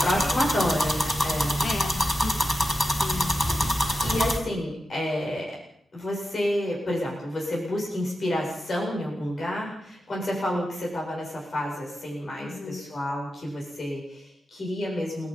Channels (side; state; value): both; normal; correlation 0.90